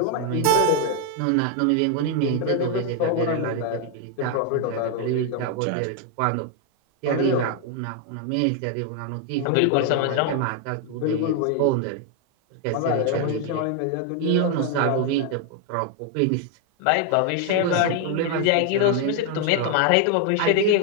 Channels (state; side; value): different; both; correlation 0.00